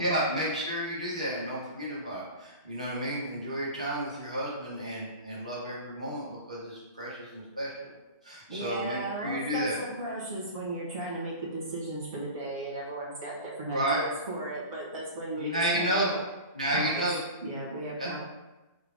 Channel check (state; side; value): inverted; both; correlation -0.32